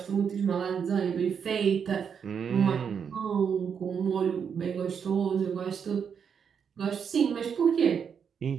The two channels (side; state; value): left; quieter; 7.1 dB